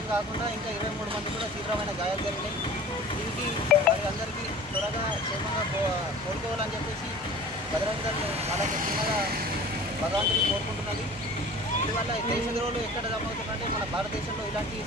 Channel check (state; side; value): normal; both; correlation 0.43